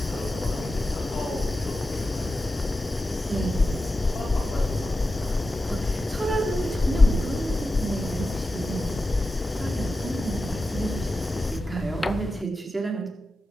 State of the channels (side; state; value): both; normal; correlation 0.92